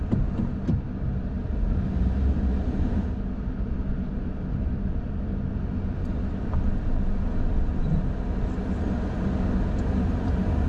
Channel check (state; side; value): identical; both; correlation 1.00